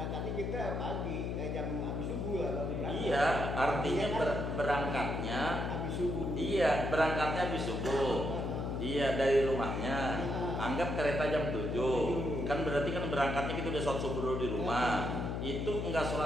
kita pagi, jam habis subuh lah baru berangkat. Iya, artinya berangkatnya habis subuh. Iya, berangkatnya habis subuh. Iya, dari rumahnya. Anggap kereta jam 7. Kan berarti kan berangkatnya kita udah sholat subuh dulu di rumah. Itu enggak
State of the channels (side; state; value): left; noise; hum, 2 dB below the sound